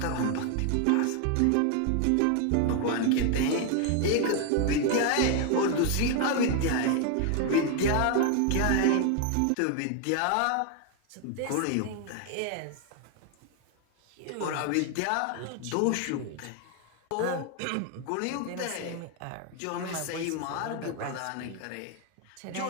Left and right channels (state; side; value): different; both; correlation 0.01